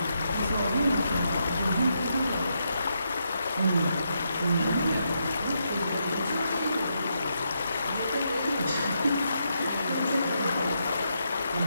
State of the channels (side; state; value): both; inverted; correlation -0.81